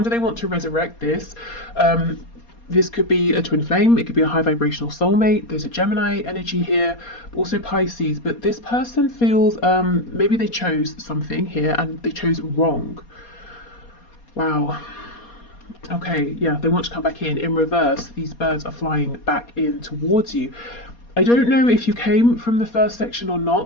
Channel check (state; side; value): late; right; 4.2 ms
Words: they want to resurrect this. This could be a twin flame. It could be a high vibrational soulmate. There's a Gemini energy here, also Pisces. But this person feels maybe they chose something here and they chose wrong. Wow. Okay, yeah, they want to come back in. In reverse, these birds are flying back in towards you. I don't know if you came from the first section or